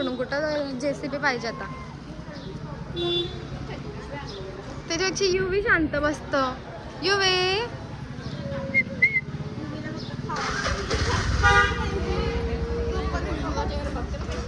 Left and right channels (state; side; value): identical; both; correlation 1.00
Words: कुठं JCB पाहिजे आता. त्याच्यापेक्षा युवी शांत बसतं. युवे